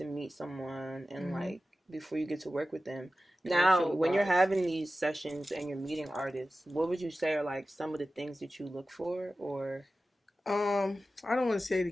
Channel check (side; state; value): both; normal; correlation 0.95